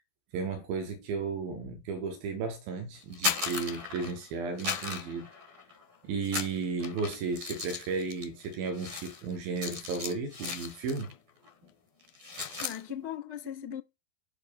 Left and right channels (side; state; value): left; late; 12 ms